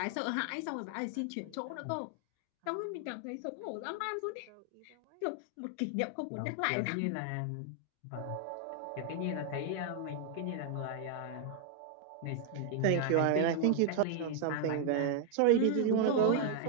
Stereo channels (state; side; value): different; both; correlation 0.00